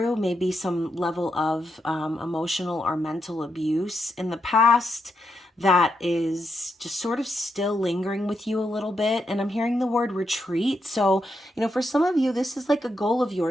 maybe some level of emotional or mental abuse in the past that is just sort of still lingering with you a little bit. And I'm hearing the word retreat. So, for some of you, this is like a goal of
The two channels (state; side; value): normal; both; correlation 0.82